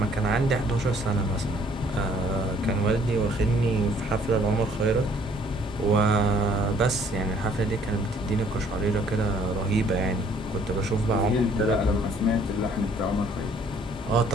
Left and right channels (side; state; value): both; normal; correlation 0.61